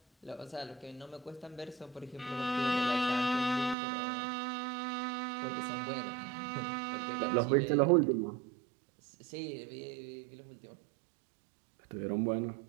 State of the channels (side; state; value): left; drops out; at 3.8 s